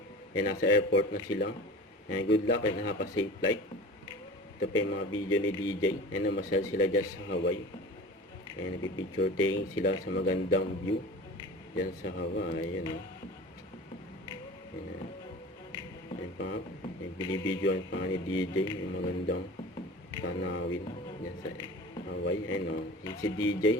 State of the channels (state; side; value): normal; both; correlation 0.37